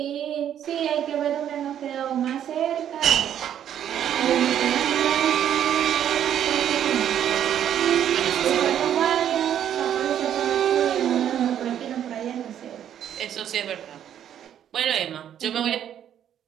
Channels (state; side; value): quieter; left; 10.0 dB